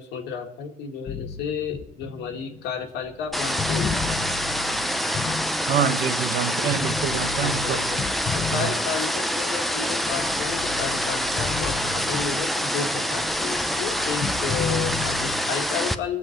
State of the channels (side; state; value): both; normal; correlation 0.64